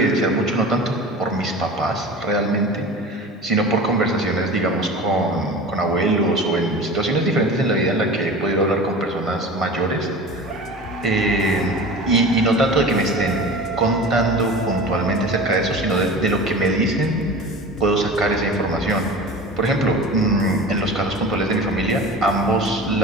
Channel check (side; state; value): both; normal; correlation 0.35